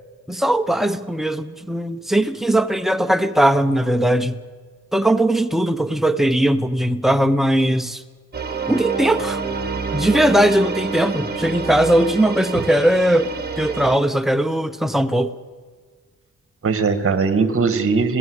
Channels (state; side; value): normal; both; correlation 0.82